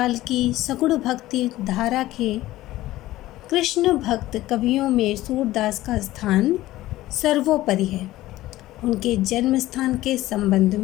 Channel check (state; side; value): quieter; right; 16.1 dB